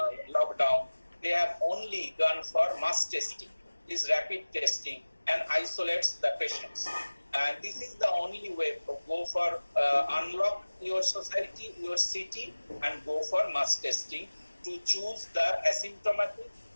lockdown. They have only gone for mass testing, this rapid testing, and isolates the patients. And this is the only way to go for unlock your society, your city, and go for mass testing to choose the asymptomatic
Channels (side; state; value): both; inverted; correlation -1.00